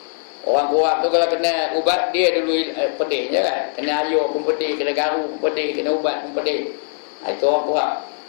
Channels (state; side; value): silent; right; 65 dB below the other